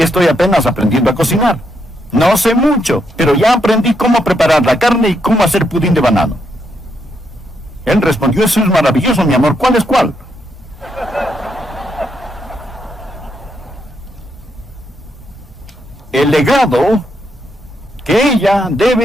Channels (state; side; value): normal; both; correlation 0.78